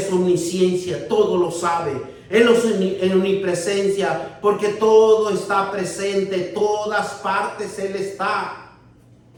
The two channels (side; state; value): both; identical; correlation 1.00